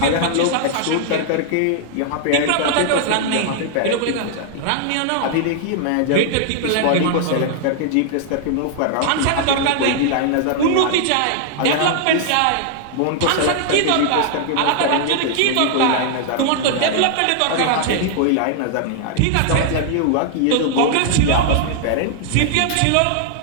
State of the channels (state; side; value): different; both; correlation -0.01